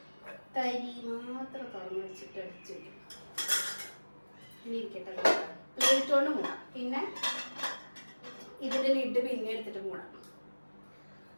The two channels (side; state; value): both; inverted; correlation -1.00